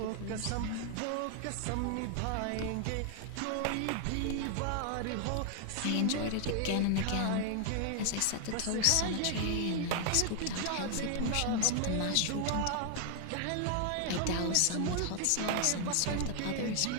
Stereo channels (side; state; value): both; different; correlation 0.00